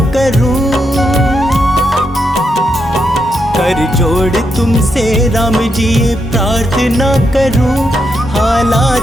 करूं, कर जोड़ तुमसे राम जी ये प्रार्थना करूं,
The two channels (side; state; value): both; normal; correlation 0.82